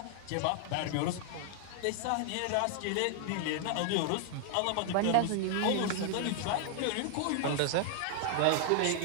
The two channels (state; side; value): different; both; correlation 0.00